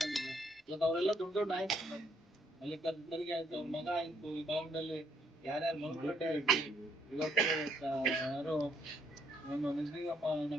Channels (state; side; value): normal; both; correlation 0.70